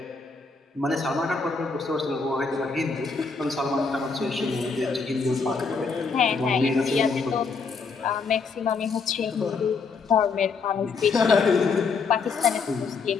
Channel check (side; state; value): right; quieter; 4.8 dB